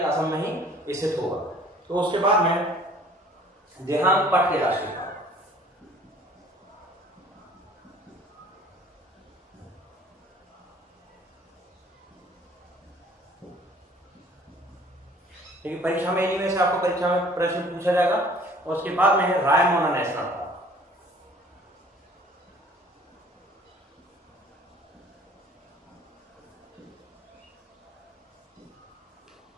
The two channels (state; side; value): normal; both; correlation 0.52